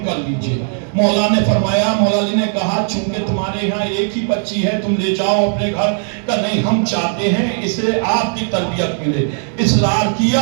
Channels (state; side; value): silent; left; 57 dB below the other